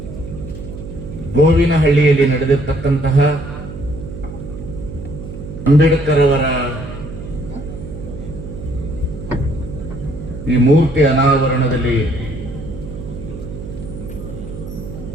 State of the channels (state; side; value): noise; right; hum, 11 dB below the sound